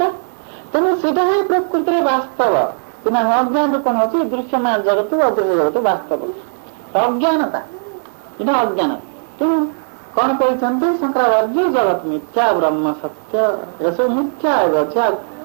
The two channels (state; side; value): silent; left; 61 dB below the other